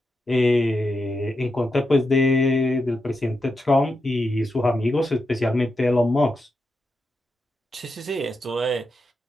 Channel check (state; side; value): normal; both; correlation 0.87